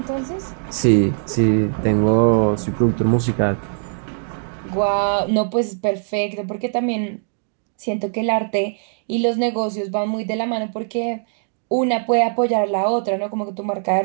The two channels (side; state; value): left; silent; digital silence